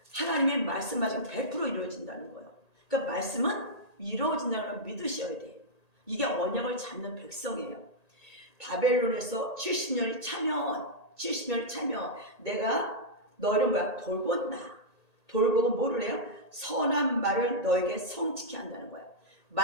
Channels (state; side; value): late; right; 1.8 ms